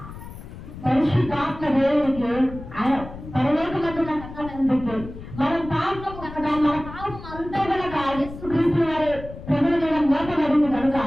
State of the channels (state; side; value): noise; left; rumble, 13 dB below the sound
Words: పరిశుద్ధాత్మ దేవునికి ఆయన పరలోకమందున కన్ననందుకు మనం పాపం కనుక మన పాపం అంతా కనుక యేసుక్రీస్తు వారి ప్రభువు మీద మోపబడింది కనుక